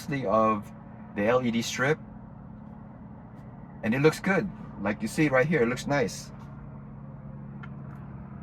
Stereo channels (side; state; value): both; identical; correlation 1.00